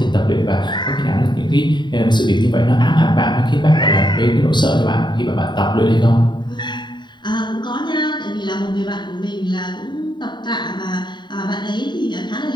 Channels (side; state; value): right; late; 0.22 ms